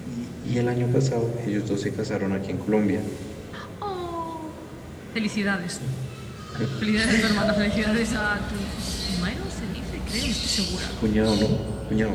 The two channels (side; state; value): both; identical; correlation 1.00